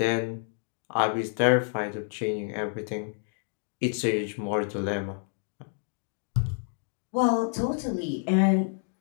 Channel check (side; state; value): right; silent; 56 dB below the other